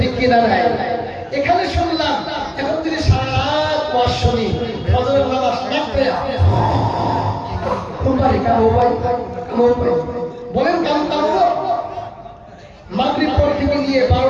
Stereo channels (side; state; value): both; identical; correlation 1.00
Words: ঠিক কিনা নাই? এখানে শুনলাম এখন যদি সারা রাত ওয়াজ শুনি, ফজরের নামাজ না পড়ে কোনবারে কাম হয়, বলেন কাম করবো? মাগরিব পর থেকে নিয়ে